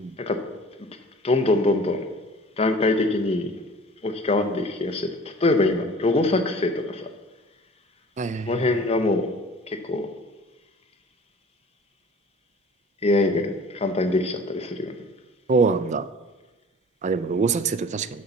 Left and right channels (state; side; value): normal; both; correlation 0.46